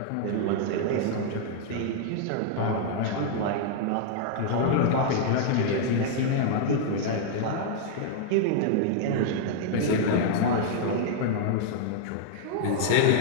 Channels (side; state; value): both; different; correlation -0.01